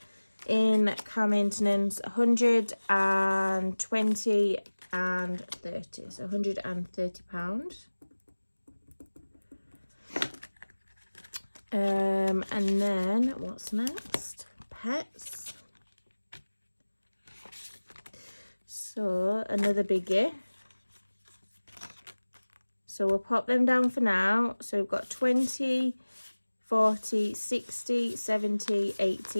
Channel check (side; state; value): both; inverted; correlation -1.00